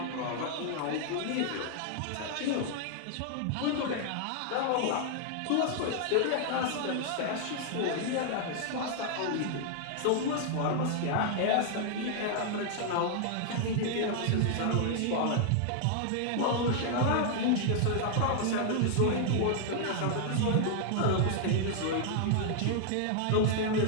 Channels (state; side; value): different; both; correlation 0.00